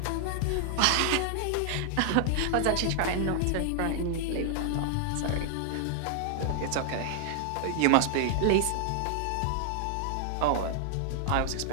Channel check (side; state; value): both; different; correlation 0.00